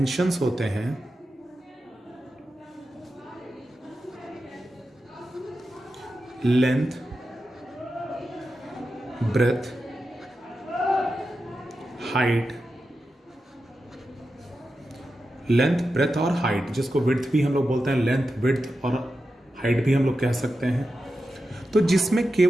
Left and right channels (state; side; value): normal; both; correlation 0.90